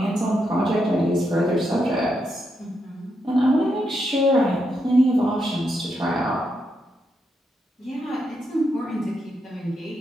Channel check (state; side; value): normal; both; correlation 0.82